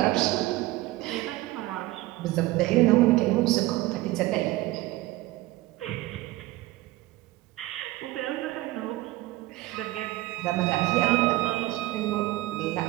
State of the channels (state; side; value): quieter; left; 18.4 dB